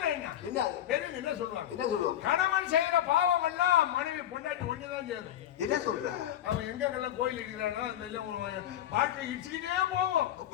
என்ன? பெரியவங்க என்ன சொல்லுவாங்க? கணவன் செய்யற பாவம் எல்லாம் மனைவி பொண்டாட்டி ஒண்ணுதான் சேரும். என்ன சொல்ற? அவன் எங்கெல்லாம் கோயில் இருக்கிறானோ அது வெளியே வாழ்க்கை இடிச்சுக்கிட்டே போவோம்.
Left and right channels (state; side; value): quieter; right; 11.6 dB